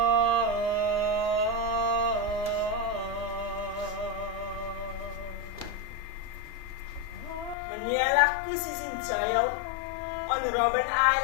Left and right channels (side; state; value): right; drops out; at 7.6 s